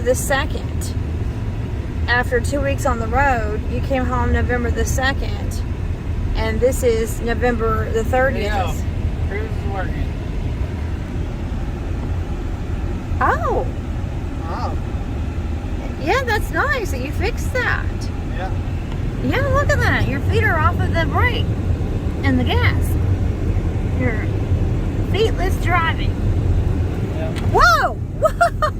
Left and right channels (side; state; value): both; identical; correlation 1.00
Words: 2nd. After 2 weeks on the road, you came home November the 2nd. And this is November the 30th. Yeah, cruise is working. Oh. Oh. Yeah, that's nice that you fixed that. Yeah. Yeah, look at that. Your feet are off of the brake and the gas. You're feetless driving. Yeah. Whoa!